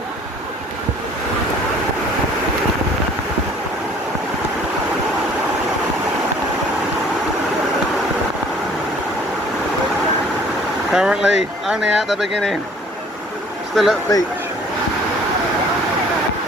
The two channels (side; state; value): both; normal; correlation 0.54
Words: Currently only at the beginning, still at the beach.